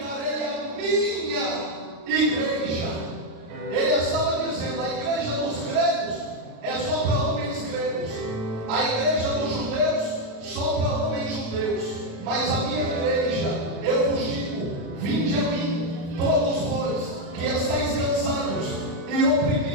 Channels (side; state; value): left; late; 36 ms